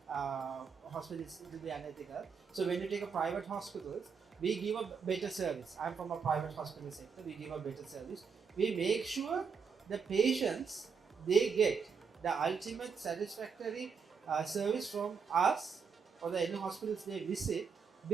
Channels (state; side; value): quieter; left; 5.9 dB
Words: hospitals; it will be unethical. So, when you take a private hospitals, we give a better service. I'm from a private hospital sector. We give a better service. We make sure the patients they get the ultimate satisfactory service from us or the any hospitals they visit